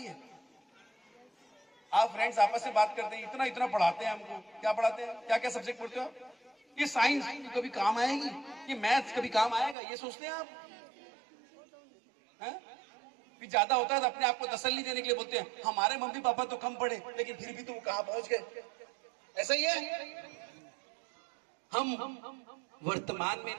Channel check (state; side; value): drops out; left; at 9.8 s